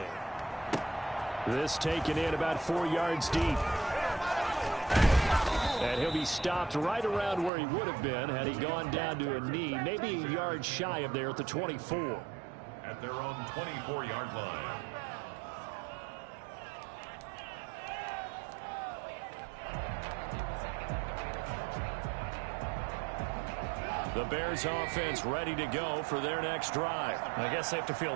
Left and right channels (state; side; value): drops out; left; at 7.5 s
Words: This taken in about 4 yards deep. And he'll be stopped right around where he would have been had he gone down to a knee, maybe a yard shy of there at the 24. At their own 24-yard line. The Bears offense ready to go for their next drive. I guess they have to feel